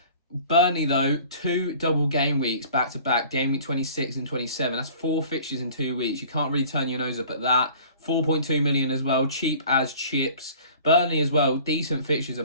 though, 2 double game weeks back-to-back, game week 26 and 27. That's 4 fixtures in 2 weeks. You can't really turn your nose up at that. 4.2 million as well, cheap as chips. Burnley as well, decent fixtures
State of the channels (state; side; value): inverted; both; correlation -0.47